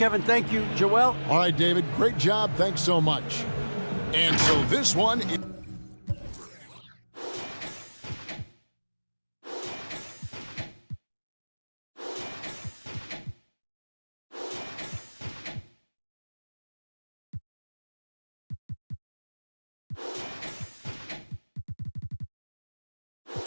thank you. Joel? All right, David, great job. Thanks so much. And so this one...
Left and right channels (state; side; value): inverted; both; correlation -1.00